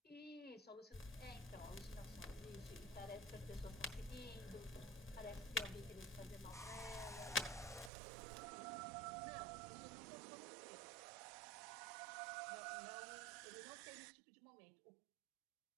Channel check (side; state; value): left; drops out; at 7.9 s